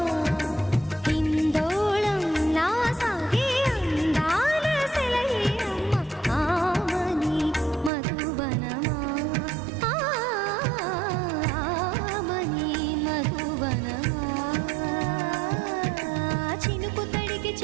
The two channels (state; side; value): drops out; left; at 7.9 s